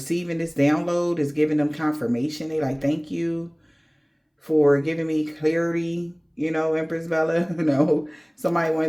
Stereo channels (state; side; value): identical; both; correlation 1.00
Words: this download is giving them confirmation. They like, thank you for giving me clarity, you know, Empress Bella. You know, somebody